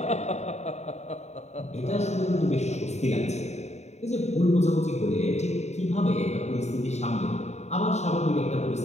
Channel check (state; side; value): late; right; 0.32 ms